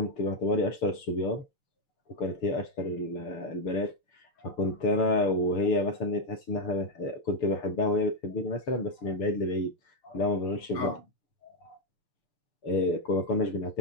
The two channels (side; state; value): right; late; 6.7 ms